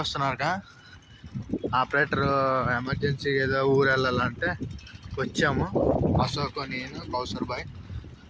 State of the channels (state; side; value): identical; both; correlation 1.00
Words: ఆపరేటర్ ఎమర్జెన్సీ ఏదో ఊరు వెళ్ళాలంటే వచ్చాము. అశోక్, నేను, కౌసర్ బాయ్